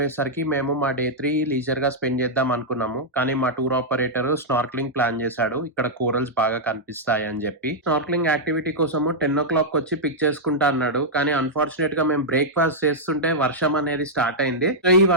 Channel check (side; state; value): both; normal; correlation -0.07